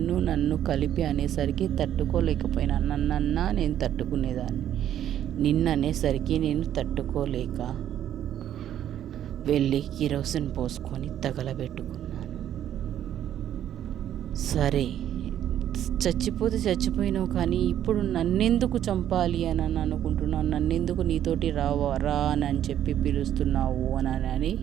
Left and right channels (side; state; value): left; quieter; 10.9 dB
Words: నన్ను కలిపి అనేసరికి తట్టుకోలేకపోయినా. నన్నన్నా నేను తట్టుకునేదాన్ని. నిన్ననేసరికి నేను తట్టుకోలేక వెళ్ళి కిరోసిన్ పోసుకొని తగలబెట్టుకున్నాను. సరే చచ్చిపోతే చచ్చిపోయినావు, కానీ ఇప్పుడు నన్నెందుకు చంపాలి అని అనుకుంటున్నావు? నన్నెందుకు నీతోటి రా అని చెప్పి పిలుస్తున్నావు అని